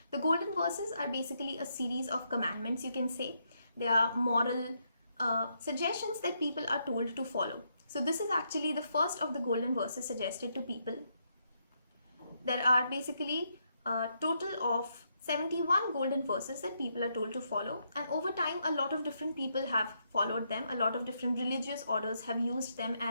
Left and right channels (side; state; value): both; inverted; correlation -0.78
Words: The golden verses are basically a series of commandments, you can say. They are moral suggestions that people are told to follow. So this is actually the first of the golden verses suggested to people. There are basically a total of 71 golden verses that people are told to follow, and over time a lot of different people have followed them. A lot of different religious orders have used them